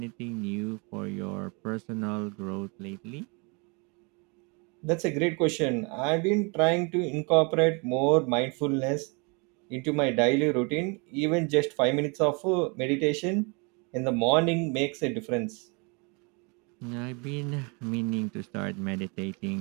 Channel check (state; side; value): quieter; left; 31.9 dB